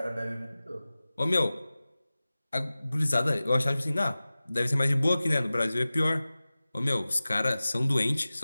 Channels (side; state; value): both; inverted; correlation -0.97